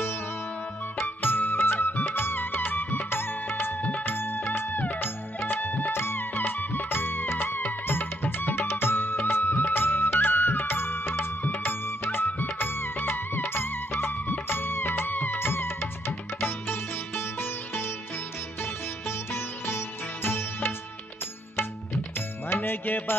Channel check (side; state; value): both; normal; correlation 0.73